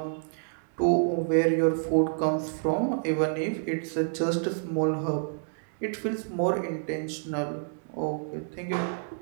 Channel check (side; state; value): left; silent; digital silence